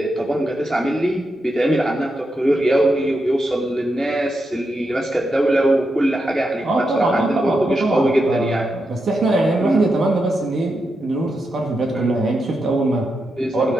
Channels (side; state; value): both; normal; correlation 0.86